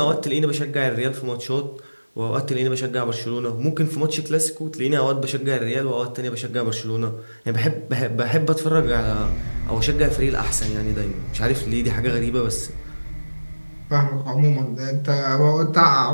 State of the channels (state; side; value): inverted; both; correlation -1.00